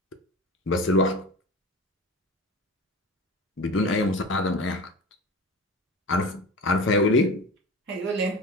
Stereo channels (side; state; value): both; normal; correlation 0.32